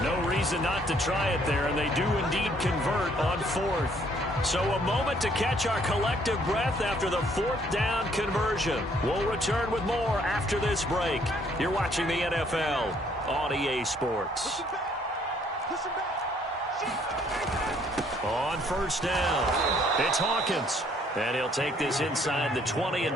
No reason not to try it there, and they do indeed convert on 4th. So a moment to catch our collective breath after the 4th down conversion. We'll return with more after this break. You're watching the NFL on EA Sports. On first down, it's Hawkins. And he'll take this inside the 20 and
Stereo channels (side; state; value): both; normal; correlation 0.64